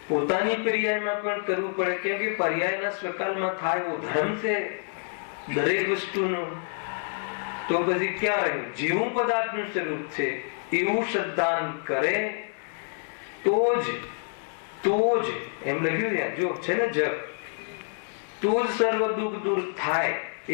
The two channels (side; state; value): right; silent; digital silence